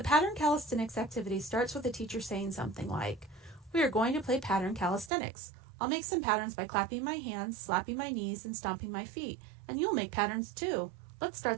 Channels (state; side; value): drops out; left; at 5.1 s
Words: pattern calisthenics activity starts with the teacher saying something like, we are going to play pattern calisthenics. I'll make some patterns by clapping my hands, slapping my knees, and stomping my feet, and you'll make patterns too. Let's